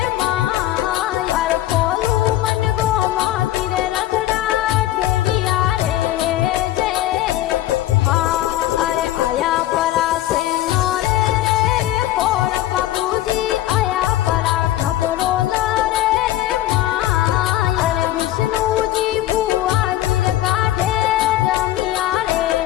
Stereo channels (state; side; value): quieter; right; 14.2 dB